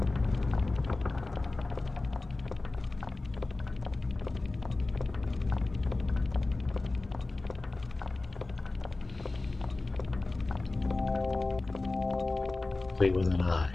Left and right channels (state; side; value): quieter; right; 3.2 dB